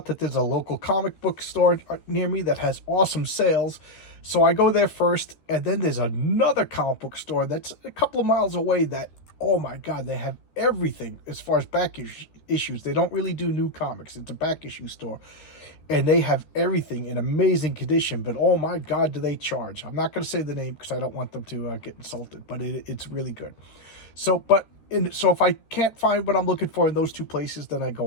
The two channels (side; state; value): right; late; 13 ms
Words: that there's a local comic book store near me that has awesome sales. So I go there first, and then there's another comic book store that's a couple of miles away that, oh my God, they have everything as far as issues. They don't really do new comics. It's a back issue store, and they have everything in amazing condition, but oh my God, do they charge. I'm not going to say the name because I don't want them to get insulted, but it's really good. So if I can't find what I'm looking for in those two places, then I